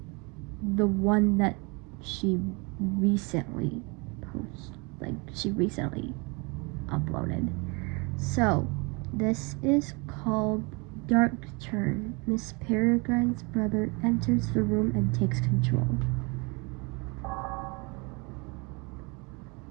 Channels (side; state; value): left; quieter; 29.7 dB